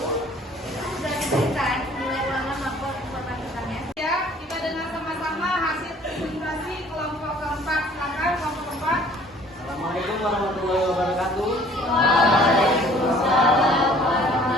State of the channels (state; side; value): normal; both; correlation 0.54